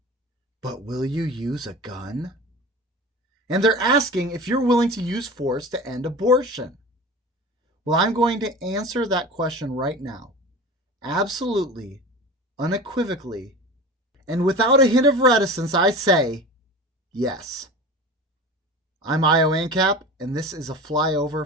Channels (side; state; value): both; normal; correlation 0.34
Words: but will you use a gun? And they're asking if you're willing to use force to end abortion. Well, I'm going to answer that question right now. Absolutely, unequivocally, and without a hint of reticence, I say yes. I'm Io Ancap, and this is a Flyover